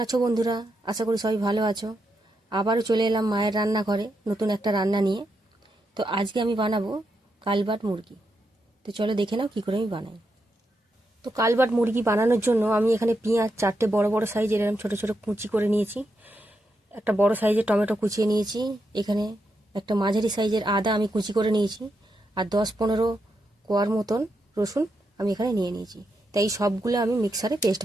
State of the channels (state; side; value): normal; both; correlation 0.84